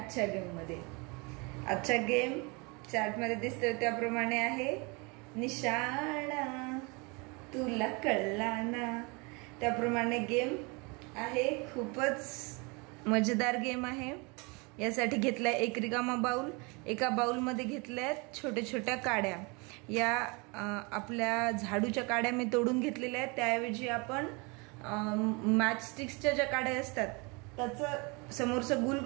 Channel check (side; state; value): left; quieter; 29.3 dB